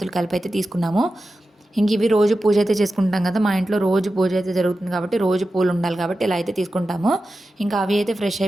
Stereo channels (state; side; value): normal; both; correlation 0.93